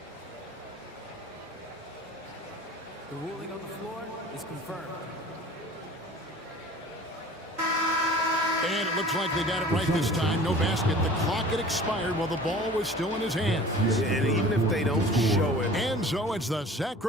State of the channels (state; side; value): normal; both; correlation 0.44